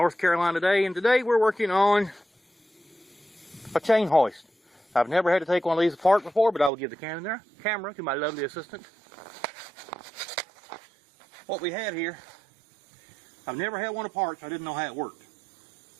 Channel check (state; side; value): drops out; left; at 6.7 s